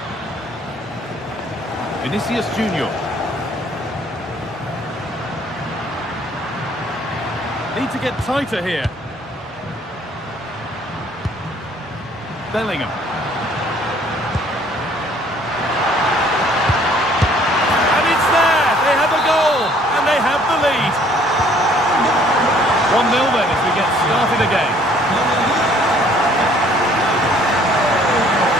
Vinicius Junior. Need to get tighter here. Bellingham. And it's there! They have a goal! And they have the lead. 1-0 then as we get started again.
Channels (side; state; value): both; normal; correlation 0.59